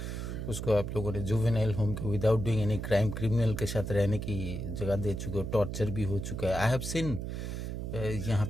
उसको आप लोगों ने जुवेनाइल होम के without doing any crime criminal के साथ रहने की जगह दे चुके हो, टॉर्चर भी हो चुका है। आई हैव सीन यहाँ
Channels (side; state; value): right; noise; hum, 5 dB below the sound